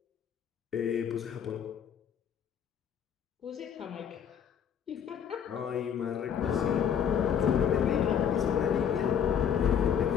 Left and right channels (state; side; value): quieter; right; 8.2 dB